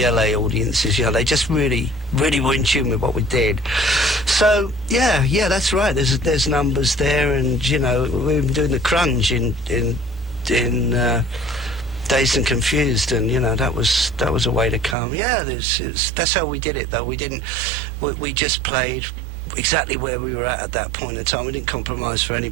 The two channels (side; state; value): left; drops out; at 15.0 s